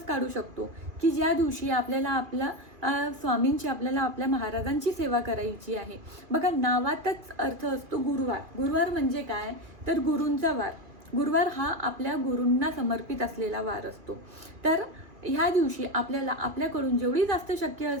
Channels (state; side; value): late; left; 2.4 ms